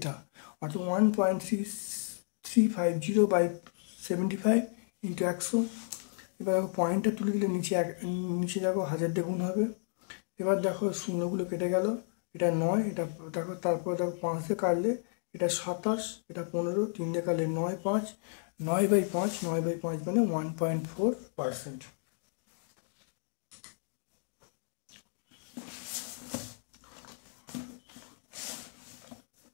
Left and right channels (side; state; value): right; silent; digital silence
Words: অর্থাৎ 1.350/75 ইন্টু 100। এবার পয়েন্টটা তুলে দিলে নিচে দেখো 1000 দিয়ে গুণ হবে। এবার দেখো শূন্যগুলো কেটে গেল, এটা 9, এটা দেখো, তারপর দেখো 5 দিয়ে কাটলে এটা 27, এটা 15, 3 দিয়ে কাটলে 9, 5, 9/5 মানে 1.4%।